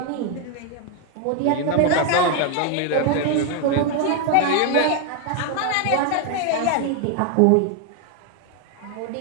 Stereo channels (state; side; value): different; both; correlation 0.01